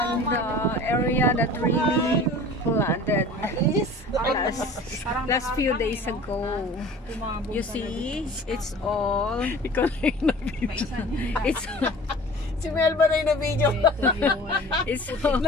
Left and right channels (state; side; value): normal; both; correlation 0.43